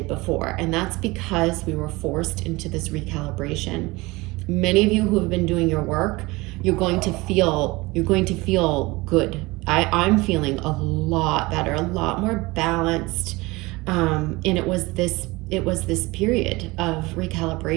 before. And that's because we were forced into this recalibration. Many of you who have been doing your work, you're going to feel good. I'm feeling a lot better, a lot more balanced. And it was this period of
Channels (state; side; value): quieter; left; 22.5 dB